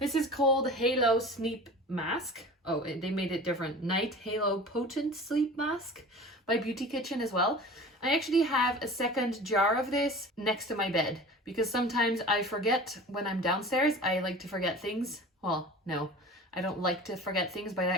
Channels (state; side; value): normal; both; correlation 0.39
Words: This is called Halo Sleep Mask. Oh, they made it different. Night Halo Potent Sleep Mask by Beauty Kitchen as well. I actually have a second jar of this next to my bed because sometimes I forget when I'm downstairs. I like to forget things. Well, no, I don't like to forget things, but I